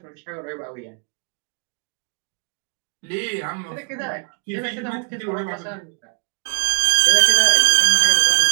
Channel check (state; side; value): quieter; left; 39.1 dB